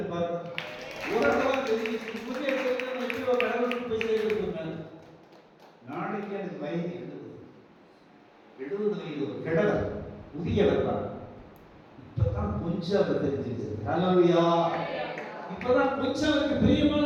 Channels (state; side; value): identical; both; correlation 1.00